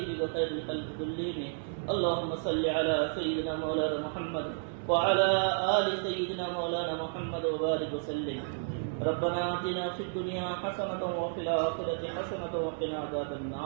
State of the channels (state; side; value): silent; left; digital silence